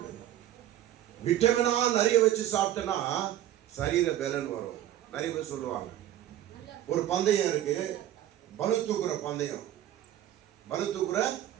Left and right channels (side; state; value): left; quieter; 12.3 dB